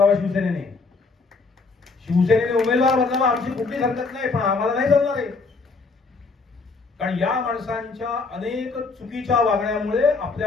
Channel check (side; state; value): right; quieter; 4.1 dB